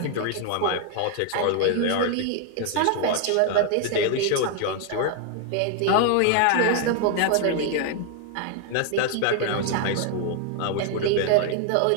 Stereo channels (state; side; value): different; both; correlation 0.00